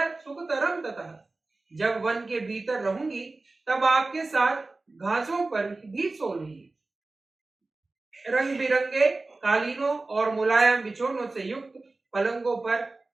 सुखतरम ततः। जब वन के भीतर रहूंगी, तब आपके साथ घासों पर भी सो लूंगी। रंग बिरंगे कालीनों और मुलायम बिछोनों से युक्त पलंगों पर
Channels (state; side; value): quieter; left; 3.3 dB